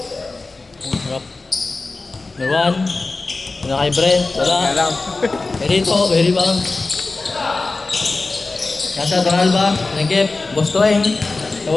Harap. Number 1. Una kay Brent. Wala. Very bang. Nasa Donalba. Nagip. Bostoeng.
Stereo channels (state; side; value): quieter; right; 3.6 dB